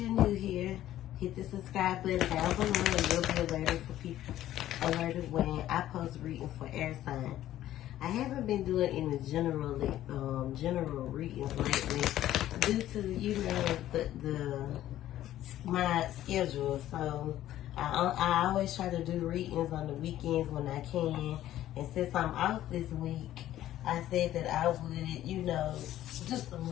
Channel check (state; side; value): quieter; right; 13.2 dB